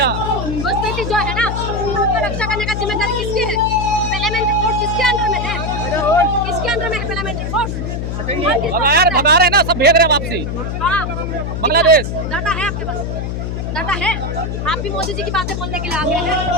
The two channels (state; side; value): noise; left; hum, 3 dB below the sound